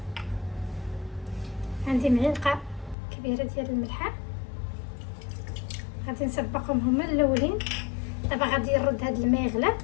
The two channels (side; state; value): right; drops out; at 3.0 s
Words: عندي معلقه كبيره ديال الملحه. غادي نسبقهم هما الاولين. دابا غادي نرد هاد الماء يغلى.